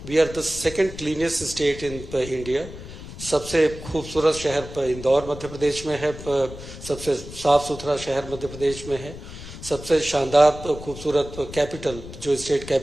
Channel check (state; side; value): noise; left; rumble, 13 dB below the sound